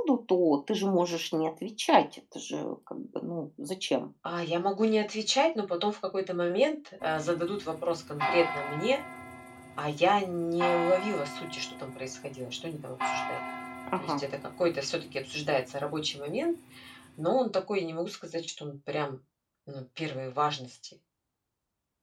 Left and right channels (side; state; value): both; identical; correlation 1.00